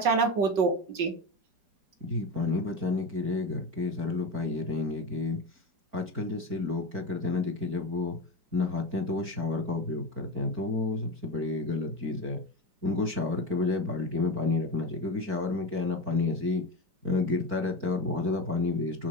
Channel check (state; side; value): late; left; 4.5 ms